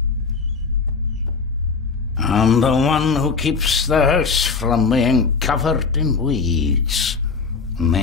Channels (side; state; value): right; quieter; 4.9 dB